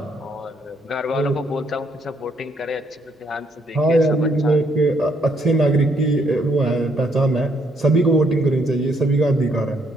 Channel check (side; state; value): both; normal; correlation 0.71